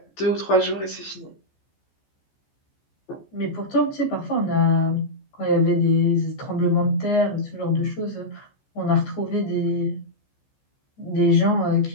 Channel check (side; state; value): right; late; 14 ms